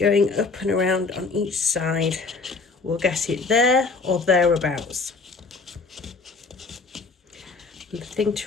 up and around on each side, we'll get it there or thereabouts. And the thing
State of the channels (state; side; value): quieter; right; 4.3 dB